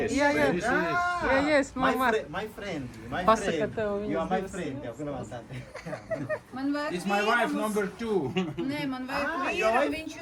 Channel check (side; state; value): both; identical; correlation 1.00